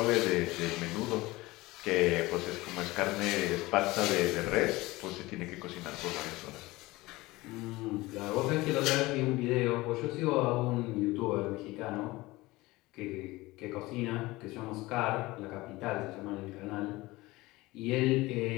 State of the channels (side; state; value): right; quieter; 20.3 dB